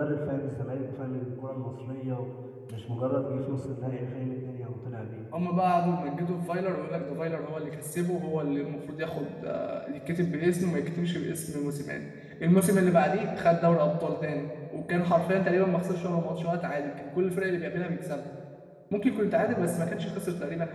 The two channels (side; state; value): both; identical; correlation 1.00